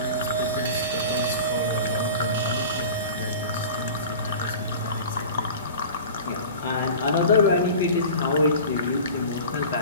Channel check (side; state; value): both; inverted; correlation -0.37